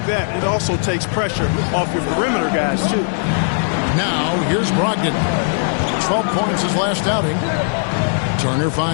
that, it also takes pressure off your perimeter guys, too. Now, here's Brogdon. 12 points his last outing. Turner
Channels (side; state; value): right; silent; 67 dB below the other